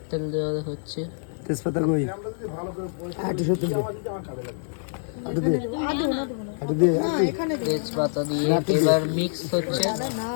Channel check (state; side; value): silent; right; digital silence